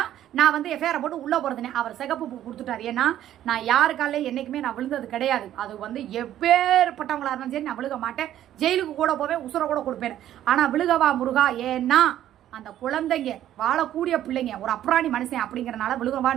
நான் வந்து எஃப்ஐஆரை போட்டு உள்ளே போகிறதுனே. அவர் சிகப்பு பூ கொடுத்துட்டார். ஏன்னா நான் யாருக்காலே என்றைக்குமே நான் விழுந்தது கிடையாது. அது வந்து எப்பேற்பட்டவங்களா இருந்தாலும் சரி நான் விழுக மாட்டேன், ஜெயிலுக்கு கூட போவேன், உசுரை கூட கொடுப்பேன். ஆனால் விழுகவா முருகா, ஏன்னா அந்த குழந்தைங்க வாழக்கூடிய பிள்ளைங்க ஒரு அப்ராணி மனுஷன் அப்படிங்கிறனால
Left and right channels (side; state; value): left; quieter; 12.0 dB